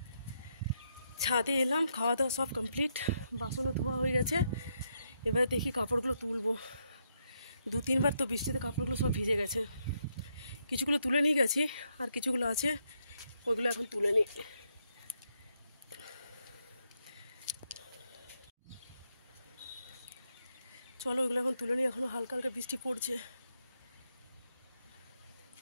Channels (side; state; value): both; inverted; correlation -0.78